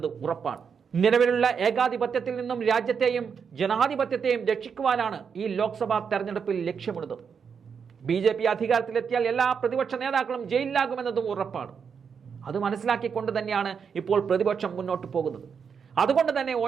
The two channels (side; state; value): left; quieter; 6.5 dB